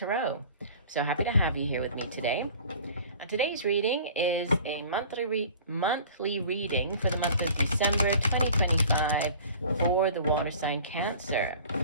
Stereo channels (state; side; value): inverted; both; correlation -0.45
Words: So happy to have you here with me today. Today's reading is a monthly reading for the month of December 2025 for the water sign Cancer.